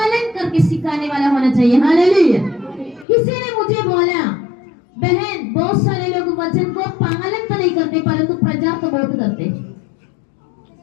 करके सिखाने वाला होना चाहिए। हालेलुया। किसी ने मुझे बोला बहन बहुत सारे लोग वचन को पालन तो नहीं करते परंतु प्रचार तो बहुत करते,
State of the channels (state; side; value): drops out; right; at 3.1 s